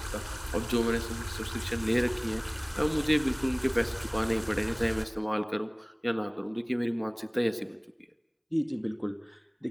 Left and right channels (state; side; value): identical; both; correlation 1.00